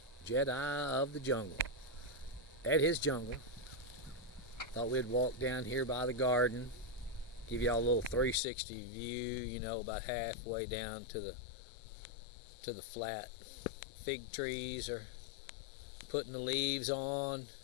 Jedi of the jungle. At his jungle. Thought we'd walk down here by the garden, give y'all a little 360 view, about halfway down to the flat. Fig trees are putting the leaves on.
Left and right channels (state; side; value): drops out; right; at 8.4 s